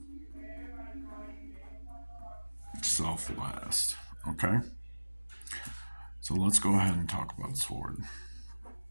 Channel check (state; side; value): inverted; both; correlation -1.00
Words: Self last. Okay? So let's go ahead and talk about sword.